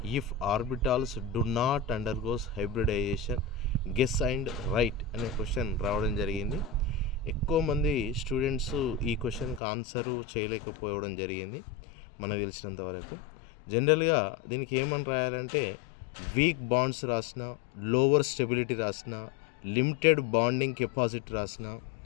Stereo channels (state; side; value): drops out; right; at 9.6 s